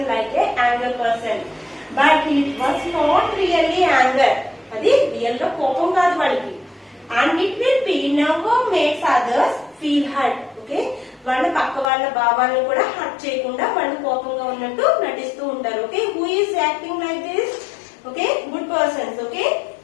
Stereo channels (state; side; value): drops out; right; at 11.9 s